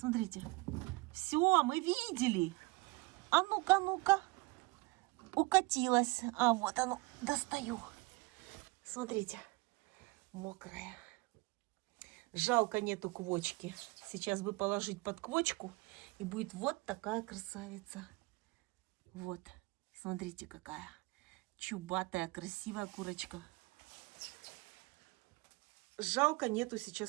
Все, мы видели. А ну-ка, ну-ка. Укатилась. А вот оно, достаю. Смотрите, мокрая. Жалко, нету квочки. Сейчас бы положить под квочку, и будет вот такая красавица. Вот, смотрите, какая чубатая, красивая курочка. Жалко, нету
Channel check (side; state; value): left; quieter; 24.7 dB